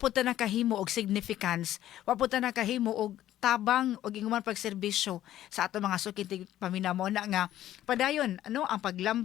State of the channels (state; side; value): quieter; right; 12.9 dB